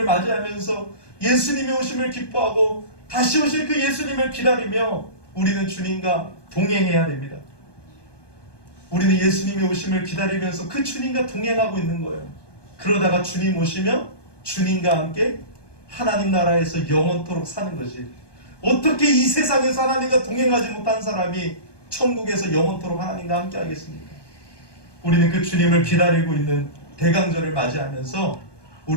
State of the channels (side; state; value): right; late; 1.2 ms